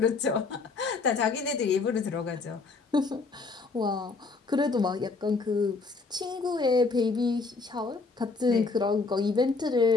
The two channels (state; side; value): quieter; right; 4.1 dB